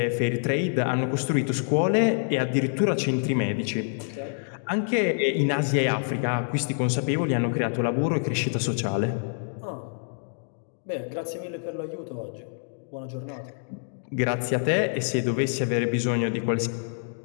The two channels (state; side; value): silent; right; digital silence